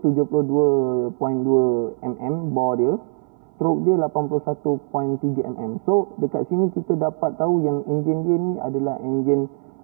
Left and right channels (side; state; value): left; silent; 59 dB below the other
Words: 72.2 mm bore dia, stroke dia 81.3 mm. So dekat sini kita dapat tahu yang enjin dia ni adalah enjin